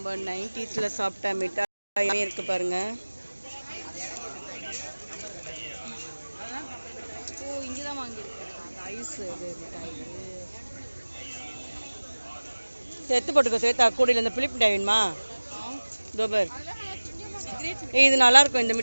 90s சாப்பிட்ட மிட்டாய் இருக்கு பாருங்க. ஓ இங்கதான் வாங்கியிருக்கேன் ஐஸ் மிட்டாய். எடுத்து போட்டுக்கோ சேத்தா கூடையில் இந்த புளிப்பு மிட்டாய் வேணுமா? தோபர் இது நல்லா இருக்கும். இந்த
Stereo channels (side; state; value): both; inverted; correlation -1.00